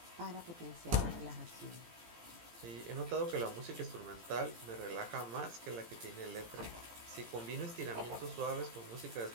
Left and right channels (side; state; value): left; late; 18 ms